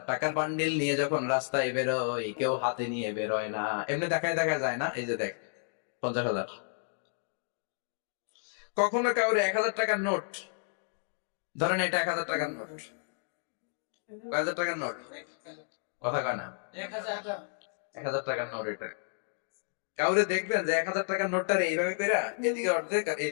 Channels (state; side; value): silent; right; digital silence